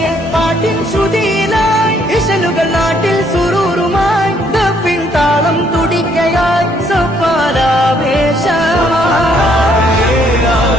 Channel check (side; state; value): both; normal; correlation 0.68